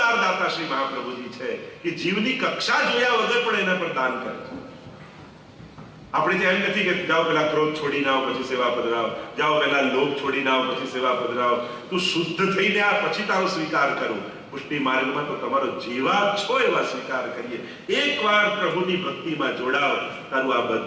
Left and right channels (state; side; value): identical; both; correlation 1.00